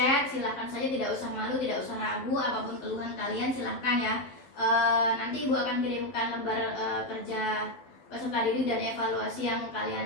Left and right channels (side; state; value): right; late; 12 ms